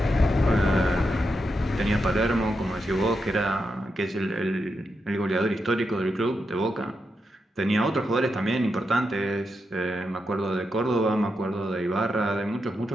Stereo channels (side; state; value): both; normal; correlation 0.85